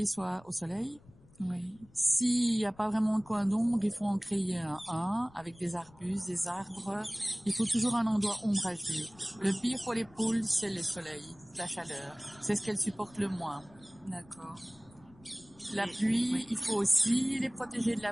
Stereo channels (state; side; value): noise; left; rumble, 25 dB below the sound